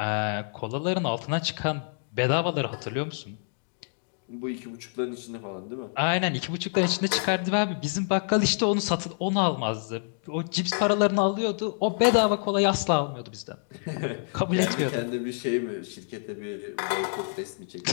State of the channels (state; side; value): silent; right; digital silence